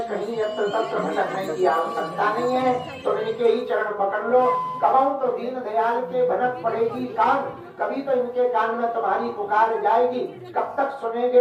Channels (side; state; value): both; identical; correlation 1.00